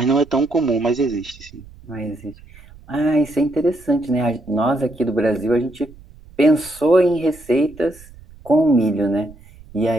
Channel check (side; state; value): right; noise; rumble, 22 dB below the sound